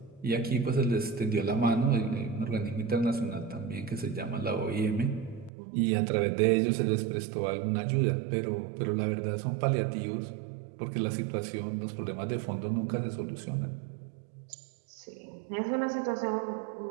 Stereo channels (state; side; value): drops out; left; at 5.5 s